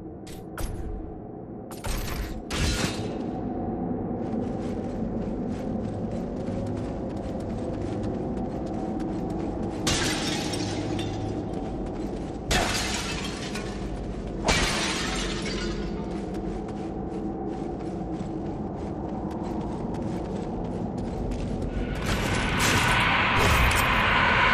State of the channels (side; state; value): both; identical; correlation 1.00